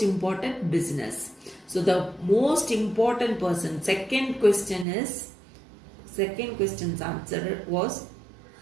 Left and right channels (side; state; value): left; drops out; at 4.9 s